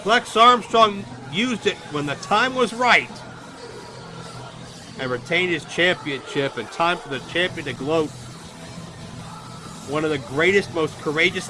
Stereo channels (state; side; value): identical; both; correlation 1.00